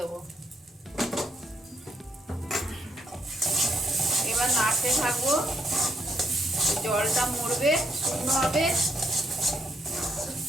এবার নাড়তে থাকবো, জলটা মরবে, শুকনো হবে।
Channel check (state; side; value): normal; both; correlation 0.75